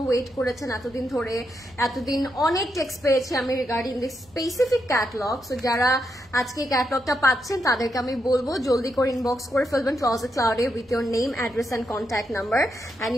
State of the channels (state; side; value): normal; both; correlation 0.82